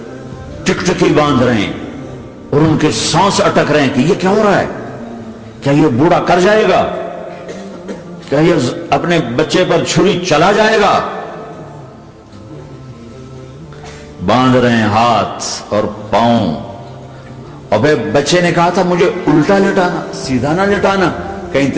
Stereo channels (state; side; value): identical; both; correlation 1.00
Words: ٹکٹکی باندھ رہے ہیں اور ان کے سانس اٹک رہے ہیں کہ یہ کیا ہو رہا ہے؟ کیا یہ بوڑھا کر جائے گا؟ کیا یہ اپنے بچے پر چھری چلا جائے گا؟ باندھ رہے ہیں ہاتھ اور پاؤں. اور پھر بچے نے کہا تھا مجھے الٹا لٹانا، سیدھا نہ لٹانا، کہیں